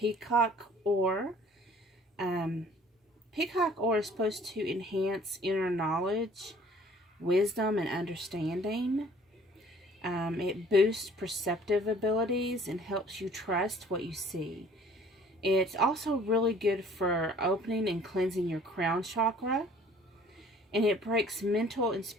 Ore. Peacock Ore is supposed to enhance inner knowledge, wisdom, and understanding. It boosts perceptive abilities and helps you trust what you see. It's also really good for opening and cleansing your crown chakra. And it breaks mental and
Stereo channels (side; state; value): both; normal; correlation 0.54